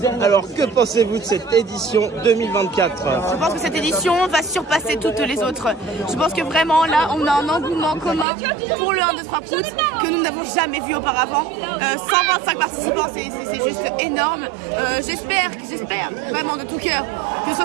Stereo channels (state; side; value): drops out; left; at 8.2 s